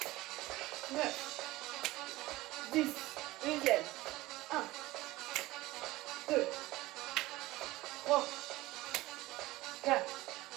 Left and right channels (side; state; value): left; quieter; 18.6 dB